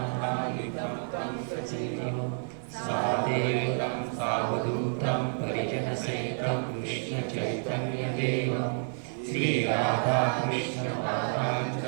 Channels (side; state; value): left; silent; 58 dB below the other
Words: तं सजीवं साद्वैतं सावधूतं परिजनसहितं कृष्णचैतन्यदेवं श्रीराधाकृष्णपादाञ्च